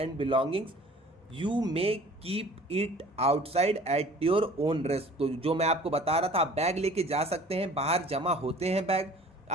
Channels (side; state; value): both; normal; correlation 0.48